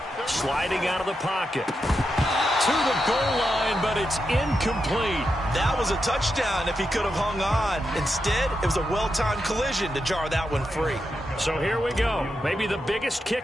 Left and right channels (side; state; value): both; normal; correlation 0.86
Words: Sliding out of the pocket. To the goal line, but it's incomplete. That was a touchdown if he could have hung on. Instead, it was a well-timed collision to jar that one free. So here we go. Maybe the biggest